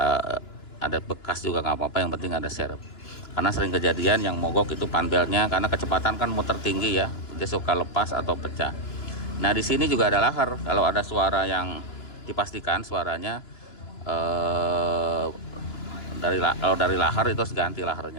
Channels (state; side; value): late; right; 2.9 ms